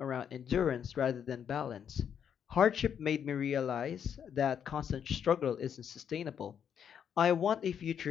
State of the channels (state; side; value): quieter; right; 8.2 dB